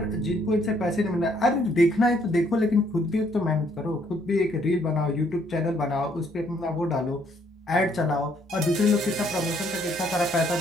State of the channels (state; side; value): normal; both; correlation 0.67